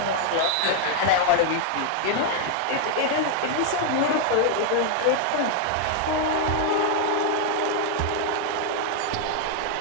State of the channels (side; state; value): both; different; correlation 0.00